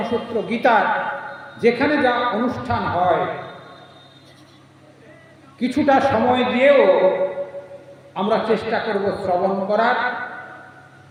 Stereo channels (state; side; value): identical; both; correlation 1.00